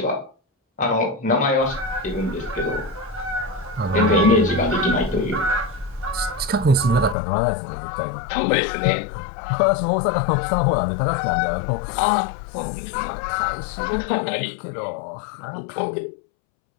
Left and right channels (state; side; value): drops out; right; at 7.2 s